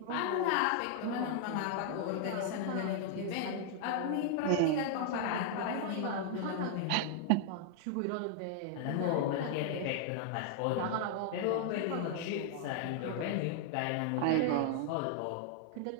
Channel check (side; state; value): both; different; correlation 0.00